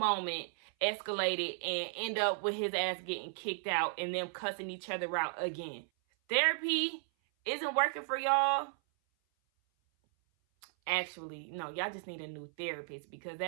escalated and end up with his ass getting kicked out and them cussing each other out again. Therapy isn't working for y'all. Actually, no, y'all just need a new therapist because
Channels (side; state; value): left; silent; 54 dB below the other